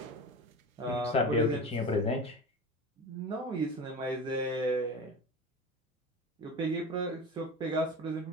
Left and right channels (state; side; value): normal; both; correlation 0.30